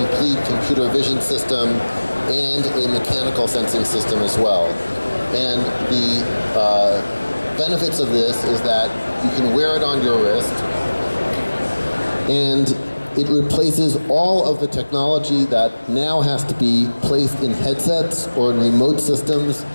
computer vision system and a mechanical sensing system as well. And the benefits of this is that you can wear it on your wrist, and it replaces all of the technology that now has to be placed in headsets or in remote systems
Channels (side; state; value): both; inverted; correlation -1.00